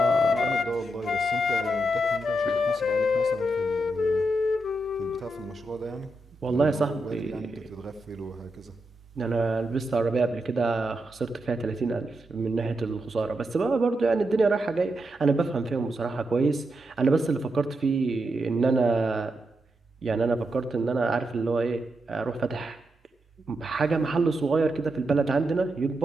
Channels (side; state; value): both; normal; correlation 0.85